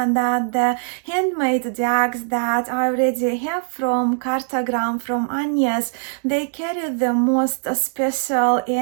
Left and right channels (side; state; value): left; silent; digital silence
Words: that the handmade decks that I already have from Kartograme, from Agnes, they carry the most special